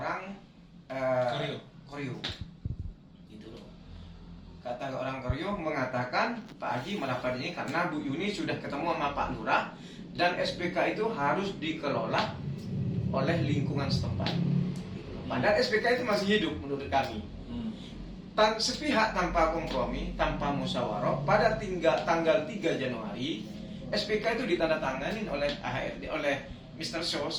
Koryo. Kata orang Koryo mengatakan Pak Haji merapat ini karena Bu Yuni sudah ketemu sama Pak Lurah dan SPK itu harus dikelola oleh lingkungan setempat. Padahal SPK itu masih hidup menurut kami. Sepihak tanpa kompromi, tanpa musyawarah, pada tanggal 3 Januari SPK itu ditandatangani oleh AHRD, oleh Mr. Shaw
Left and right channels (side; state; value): both; identical; correlation 1.00